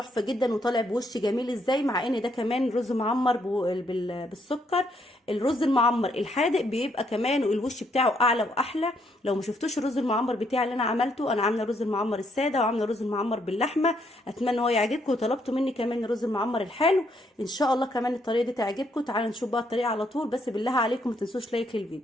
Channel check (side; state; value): both; normal; correlation 0.73